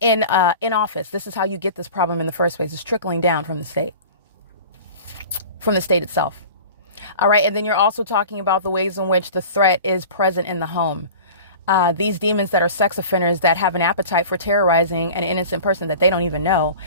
office. This is how you get this problem in the first place. It's trickling down from the state itself. All right. And then you're also talking about the ways in which the threat is present in the home. These demons that are sex offenders that have an appetite for terrorizing an innocent person that they don't even know,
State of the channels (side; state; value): both; inverted; correlation -0.39